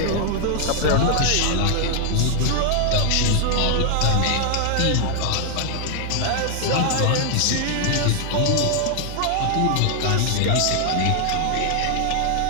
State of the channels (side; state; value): both; different; correlation 0.00